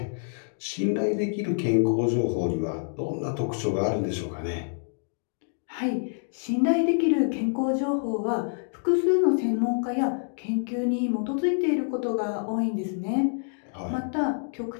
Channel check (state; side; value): silent; right; digital silence